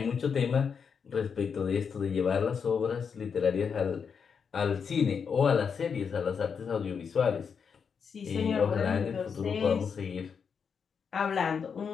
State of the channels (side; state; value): right; quieter; 6.4 dB